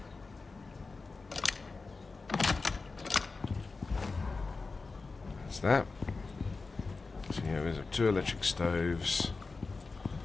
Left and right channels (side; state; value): right; quieter; 4.0 dB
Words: That's that. So yeah, there's two electric stoves.